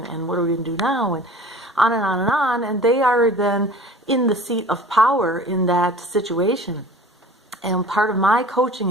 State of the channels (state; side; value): normal; both; correlation 0.43